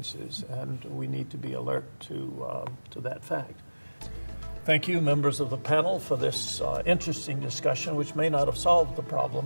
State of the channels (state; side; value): inverted; both; correlation -1.00